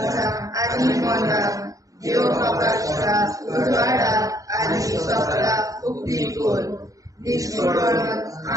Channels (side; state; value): left; late; 0.16 ms